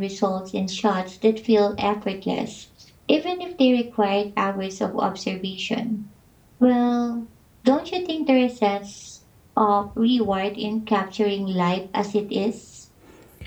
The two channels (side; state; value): both; identical; correlation 1.00